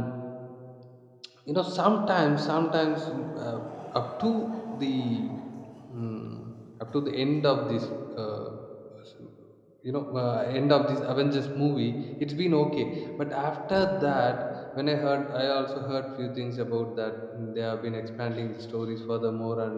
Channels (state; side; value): identical; both; correlation 1.00